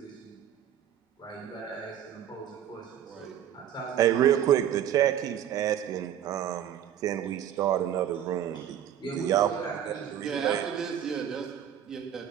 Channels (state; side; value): quieter; left; 10.2 dB